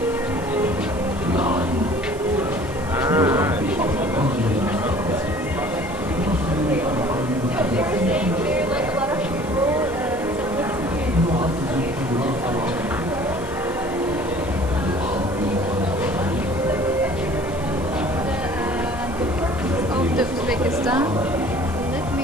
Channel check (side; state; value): right; noise; hiss, 20 dB below the sound